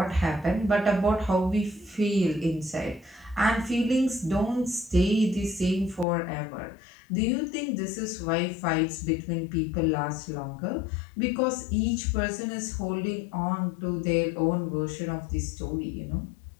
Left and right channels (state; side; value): drops out; right; at 6.1 s